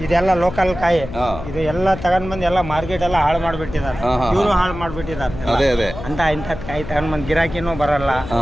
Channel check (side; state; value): left; noise; hum, 11 dB below the sound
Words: ಇದೆಲ್ಲ ಲೋಕಲ್ ಕಾಯಿ. ಇದು ಎಲ್ಲ ತಗೊಂಡ್ ಬಂದು ಎಲ್ಲ ಮಾರ್ಕೆಟ್ ಎಲ್ಲ ಹಾಳು ಮಾಡ್ಬಿಟ್ಟಿದ್ದಾರೆ, ಇವರು ಹಾಳು ಮಾಡ್ಬಿಟ್ಟಿದ್ದಾರೆ. ಅದೇ ಅದೇ ಅಂತ ಇಂಥದ್ ಕಾಯಿ ತಗೊಂಡ್ ಬಂದ್ ಗಿರಾಕಿನೂ ಬರಲ್ಲ.